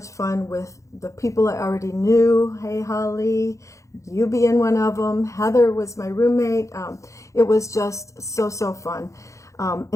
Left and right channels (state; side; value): late; right; 0.15 ms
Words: fun with the people I already knew. Hey, Holly, you being one of them. Heather was my roommate. It was just so, so fun.